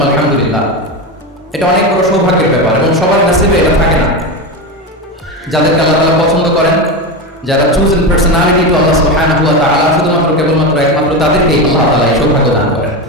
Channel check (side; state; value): both; normal; correlation 0.18